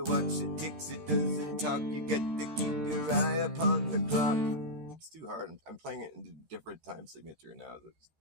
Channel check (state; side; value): late; left; 13 ms